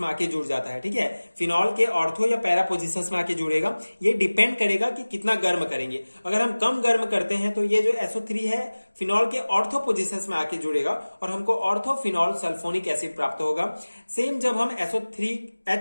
में आके जुड़ जाता है। ठीक है, फिनॉल के ऑर्थो या पैरा पोजिशंस में आके जुड़ेगा। ये डिपेंड करेगा कि कितना गर्म करेंगे। अगर हम कम गर्म करते हैं तो ये जो SO3 है फिनॉल के ऑर्थो पोजिशंस में आके जुड़ेगा और हमको ऑर्थोफिनॉल सल्फोनिक एसिड प्राप्त होगा। सेम जब हम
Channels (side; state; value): both; inverted; correlation -1.00